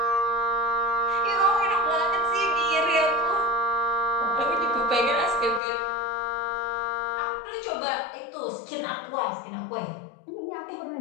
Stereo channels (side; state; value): right; drops out; at 5.6 s